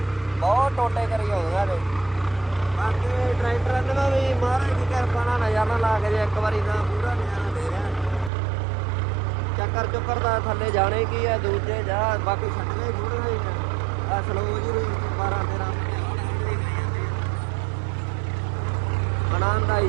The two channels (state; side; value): drops out; left; at 8.3 s